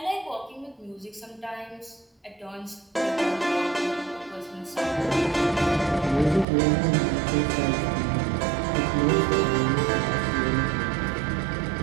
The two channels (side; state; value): left; drops out; at 6.5 s